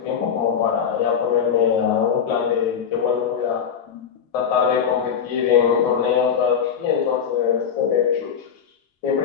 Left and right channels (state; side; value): quieter; right; 7.5 dB